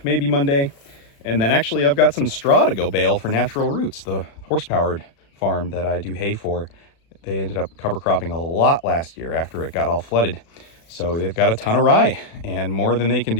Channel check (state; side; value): late; right; 36 ms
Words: maybe Monday. And then actually I've got some straw to go bale for Natural Roots, the horse-powered farm that I do hay for. They ended up cover cropping a lot last year after it got all flooded. So they've got a ton of rye and more than they can